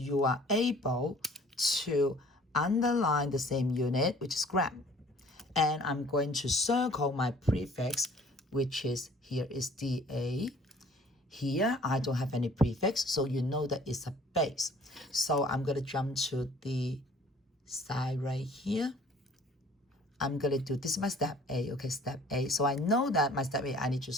are able to underline the same unit, which is gram. And I'm going to circle my prefix, which is here is DA. Here, I don't have any prefix, so you know that it's a base. So I'm going to jump to the side right here. I'm going to do, this is my step A, okay, step A. So I know that my step A, I need to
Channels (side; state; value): both; normal; correlation 0.53